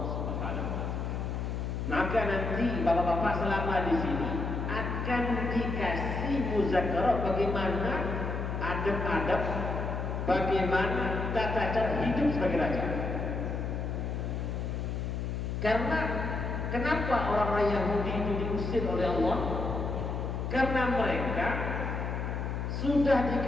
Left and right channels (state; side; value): noise; left; hum, 2 dB below the sound